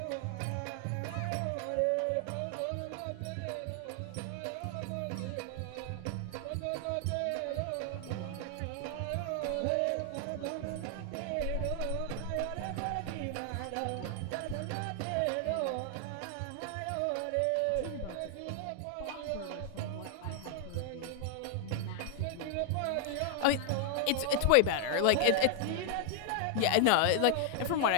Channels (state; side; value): different; both; correlation 0.00